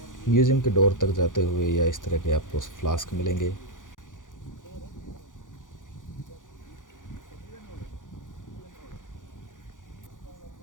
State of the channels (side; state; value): right; late; 0.88 ms